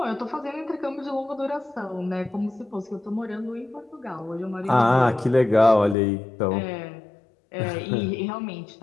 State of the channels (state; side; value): drops out; right; at 6.0 s